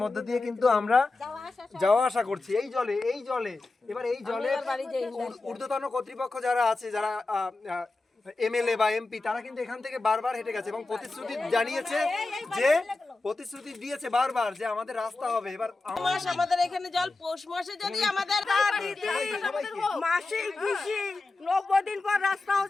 মধ্যে দিয়ে কিন্তু আমরা যাওয়া আসা করছি এই জলে। এবার এই জলে ঊর্ধ্বতন কর্তৃপক্ষ যারা আছে, যারা এমএলএ বা এমপি, তারা কিন্তু এখান থেকে বারবার হেঁটে গেছে এবং প্রতিশ্রুতি জানিয়েছে, যে প্রতিশ্রুতি দিয়েছে বারবার যে আমাদের রাস্তা হবে। এবার আমাদের এখানে জল পৌষ মাসে যদি আমাদের মাসিক 90 দিন পর রাস্তা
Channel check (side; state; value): right; quieter; 3.4 dB